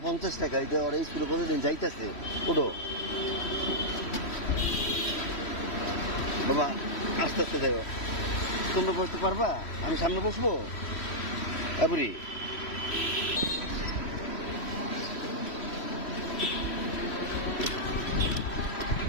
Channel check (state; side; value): late; right; 3.1 ms